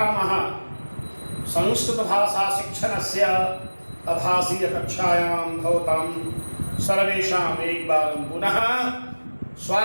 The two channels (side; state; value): both; inverted; correlation -1.00